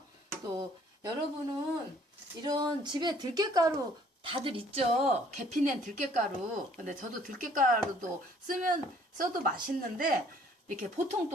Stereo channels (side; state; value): both; normal; correlation 0.59